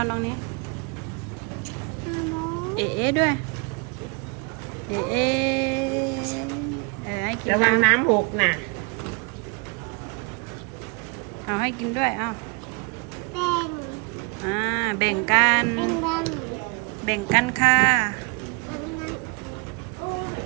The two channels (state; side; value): quieter; left; 32.2 dB